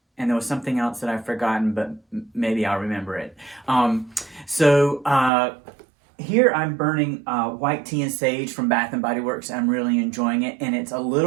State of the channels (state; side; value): drops out; left; at 5.3 s